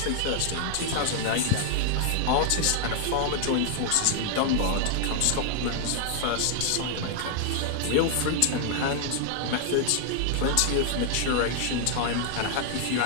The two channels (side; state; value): both; different; correlation 0.00